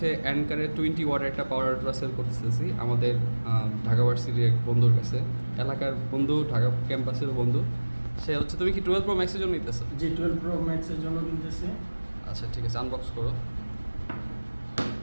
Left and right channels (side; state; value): both; inverted; correlation -1.00